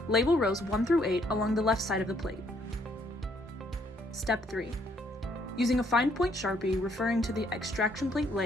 Label rows 1 through 8 along the left side of the plate. Step 3. Using a fine point Sharpie referring to the extraction plate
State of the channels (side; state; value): both; normal; correlation 0.68